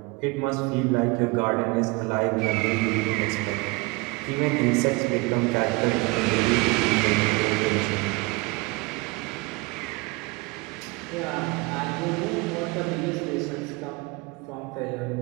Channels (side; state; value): left; quieter; 25.5 dB